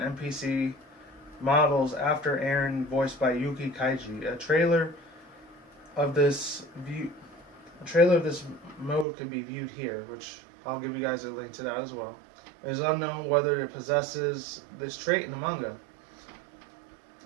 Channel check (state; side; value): drops out; left; at 9.1 s